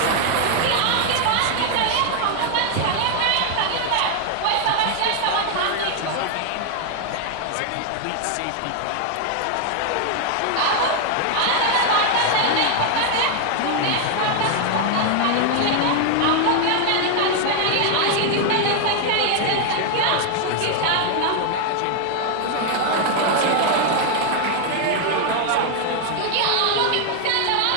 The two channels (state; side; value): different; both; correlation 0.00